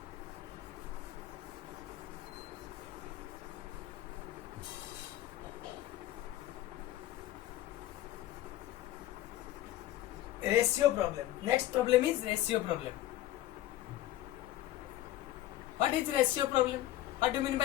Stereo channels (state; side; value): quieter; right; 14.4 dB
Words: ratio problem. Next problem is ratio problem. What is ratio problem? What do you mean